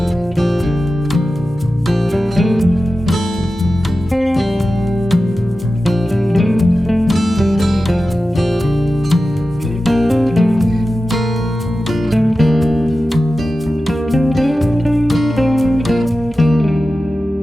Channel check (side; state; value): both; normal; correlation 0.94